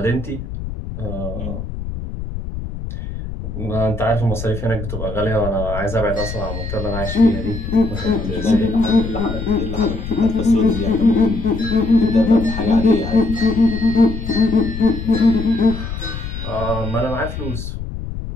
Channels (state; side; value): noise; left; rumble, 7 dB below the sound